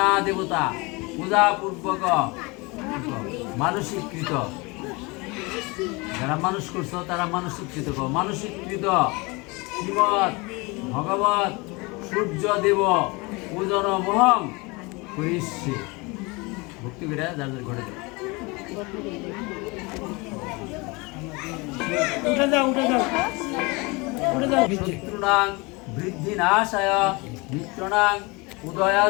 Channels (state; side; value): quieter; right; 26.2 dB